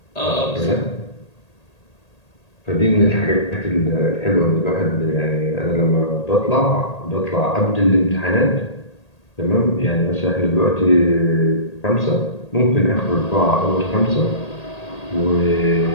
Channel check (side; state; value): right; late; 1.8 ms